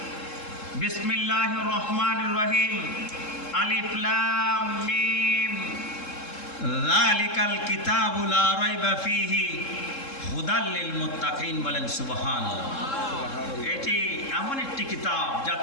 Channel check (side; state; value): right; late; 3.7 ms